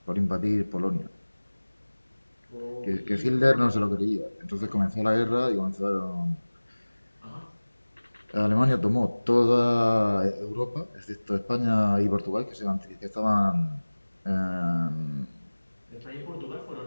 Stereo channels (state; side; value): inverted; both; correlation -1.00